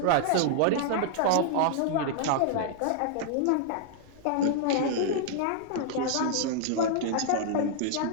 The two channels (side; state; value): both; different; correlation -0.01